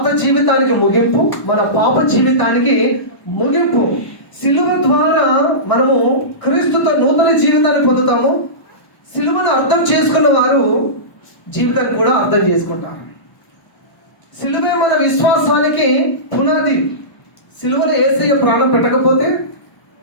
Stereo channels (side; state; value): right; late; 1.0 ms